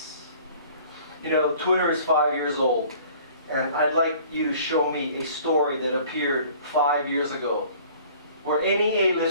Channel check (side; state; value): both; inverted; correlation -0.51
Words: Twitter is 5 years old. And I'd like you to show me a story that appeared 5 years ago, where any